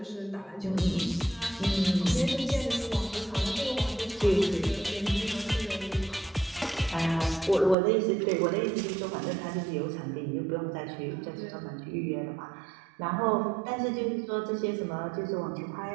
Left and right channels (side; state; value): left; drops out; at 7.8 s